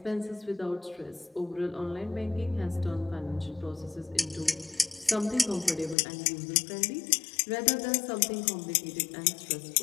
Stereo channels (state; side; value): drops out; right; at 6.0 s